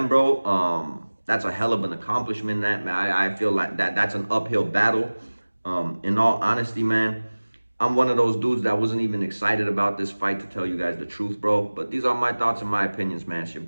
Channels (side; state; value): both; inverted; correlation -1.00